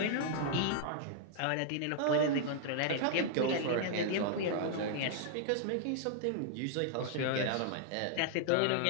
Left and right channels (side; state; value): both; different; correlation -0.01